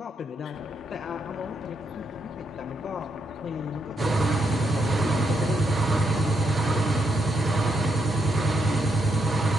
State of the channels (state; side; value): normal; both; correlation 0.79